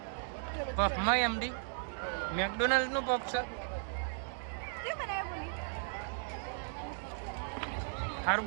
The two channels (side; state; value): left; silent; digital silence